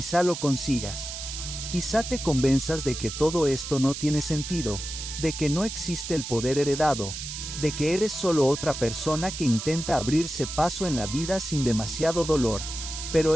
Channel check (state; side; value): noise; right; hiss, 7 dB below the sound